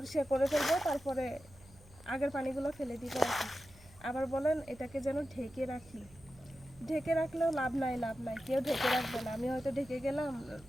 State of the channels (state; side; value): noise; right; hum, 23 dB below the sound